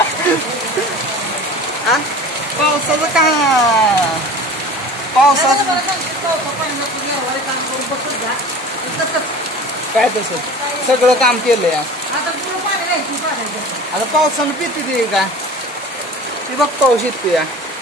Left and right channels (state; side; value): normal; both; correlation 0.39